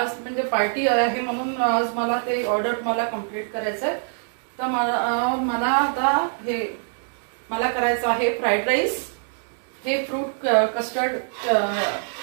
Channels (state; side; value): silent; left; digital silence